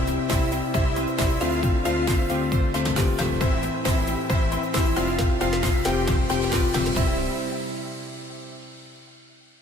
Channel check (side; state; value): both; normal; correlation 0.67